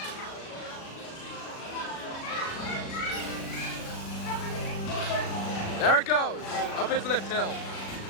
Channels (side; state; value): right; late; 36 ms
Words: There it goes, up its lift hill.